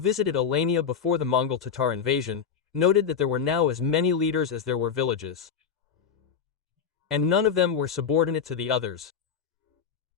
Alania before the Mongol Tatar invasion, noted that there were now as many leaders as there were villages, and none of them were subordinate to the others.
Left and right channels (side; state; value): right; quieter; 6.9 dB